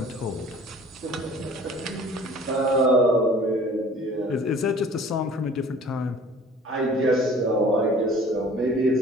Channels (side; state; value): both; normal; correlation 0.48